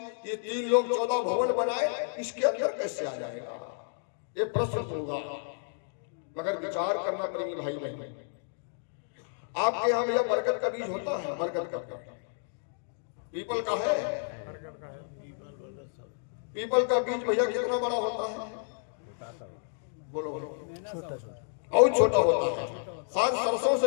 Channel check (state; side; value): silent; right; digital silence